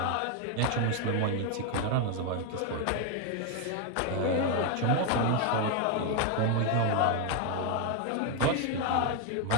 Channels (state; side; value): different; both; correlation 0.01